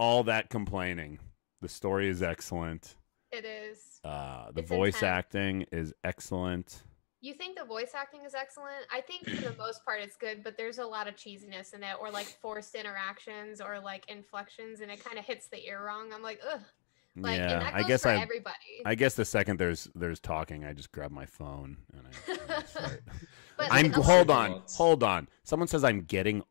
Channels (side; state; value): right; silent; 55 dB below the other